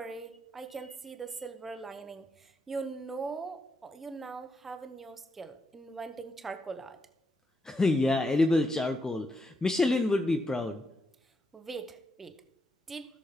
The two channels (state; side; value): normal; both; correlation 0.82